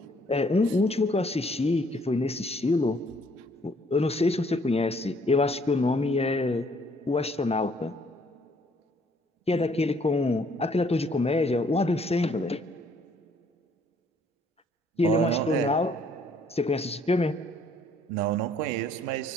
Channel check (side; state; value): both; normal; correlation 0.63